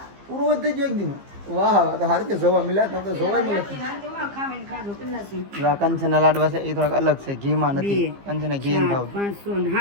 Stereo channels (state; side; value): late; left; 15 ms